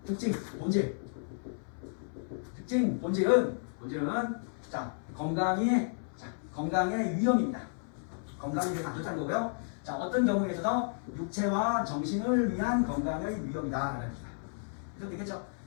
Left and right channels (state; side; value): silent; right; 56 dB below the other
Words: 본질은 자, 건강의 위험입니다. 건강에 대해서 안 좋다는 거고요. 자, 어떤 경우에 있어서 육체와 정신을 위한 건강의 위험이다 라는 겁니다. 그래서 되겠죠?